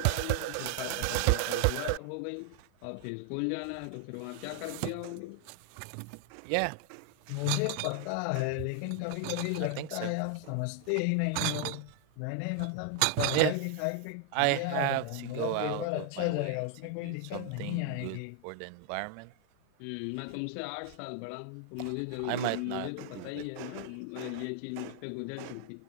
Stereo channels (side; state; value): both; different; correlation 0.00